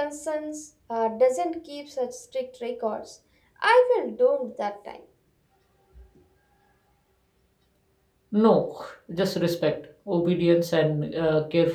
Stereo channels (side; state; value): both; identical; correlation 1.00